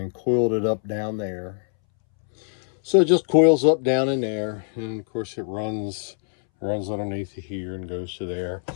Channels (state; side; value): silent; right; 63 dB below the other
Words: coiled it up down there. So it just coils up down in there, and of course it runs underneath here and goes to there.